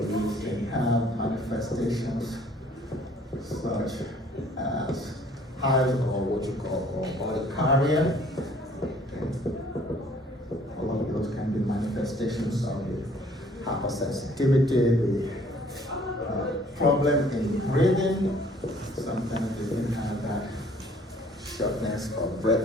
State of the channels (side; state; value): both; normal; correlation 0.57